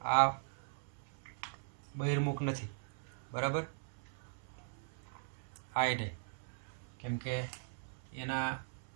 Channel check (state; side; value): silent; left; 51 dB below the other